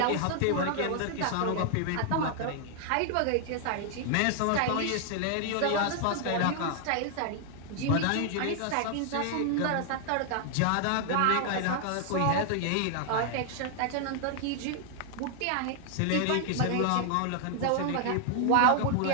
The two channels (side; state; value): both; different; correlation 0.00